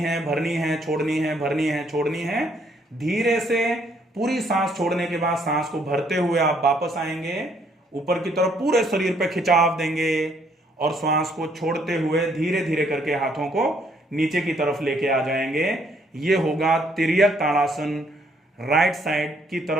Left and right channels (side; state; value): both; normal; correlation 0.67